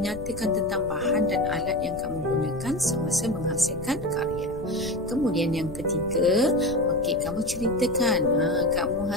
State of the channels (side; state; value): left; noise; rumble, 13 dB below the sound